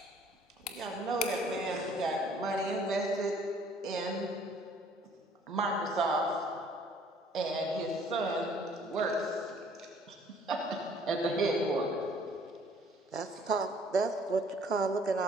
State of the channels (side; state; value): both; normal; correlation 0.58